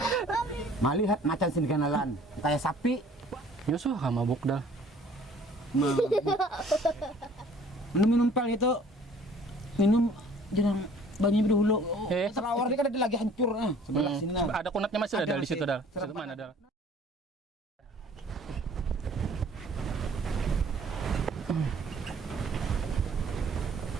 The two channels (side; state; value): both; normal; correlation 0.54